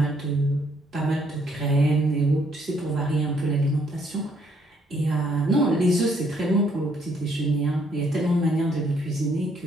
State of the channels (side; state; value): both; normal; correlation 0.68